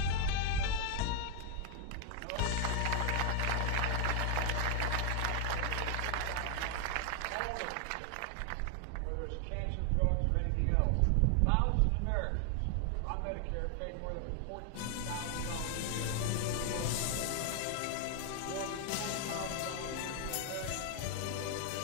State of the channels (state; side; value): different; both; correlation 0.00